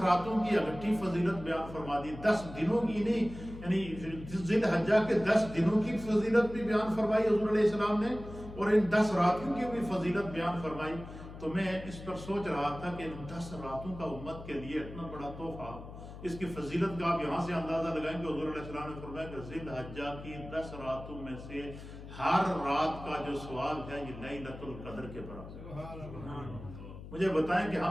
کی اکٹھی فضیلت بیان فرما دی، 10 دنوں کی نہیں، یعنی ذی الحجہ کے 10 دنوں کی فضیلت بھی بیان فرمائی حضور علیہ السلام نے، اور ان 10 راتوں کی بھی فضیلت بیان فرمائی۔ تو میں اس پر سوچ رہا تھا کہ ان 10 راتوں کا امت کے لیے اتنا بڑا تحفہ، اس کی فضیلت کا آپ یہاں سے اندازہ لگائیں کہ حضور علیہ السلام نے فرمایا کہ ذی الحجہ کی 10 راتوں میں سے ہر رات کا جو ثواب ہے یہ لیلۃ القدر کے برابر۔ مجھے بتائیں کہ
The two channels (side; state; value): left; noise; hum, 13 dB below the sound